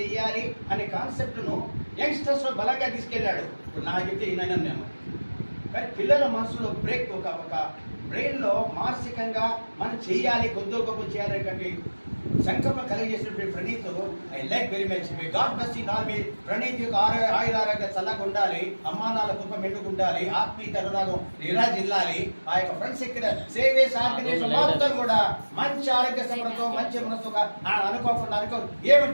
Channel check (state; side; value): inverted; both; correlation -1.00